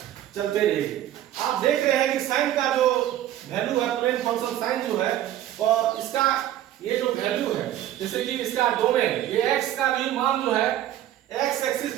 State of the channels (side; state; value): left; quieter; 12.6 dB